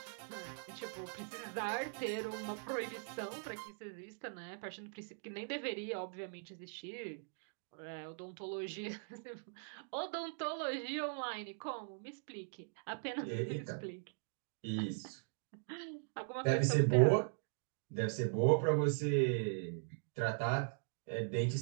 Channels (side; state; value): left; silent; digital silence